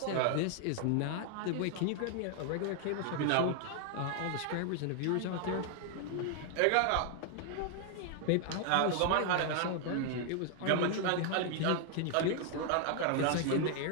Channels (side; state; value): both; different; correlation 0.00